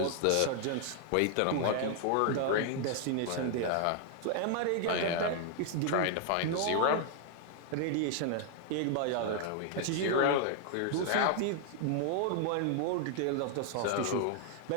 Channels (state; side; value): different; both; correlation 0.00